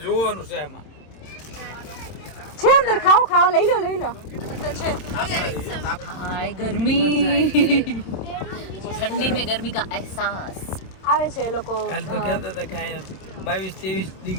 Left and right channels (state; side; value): late; right; 26 ms